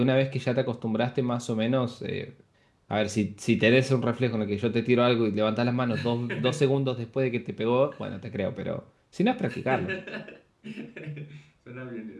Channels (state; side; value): identical; both; correlation 1.00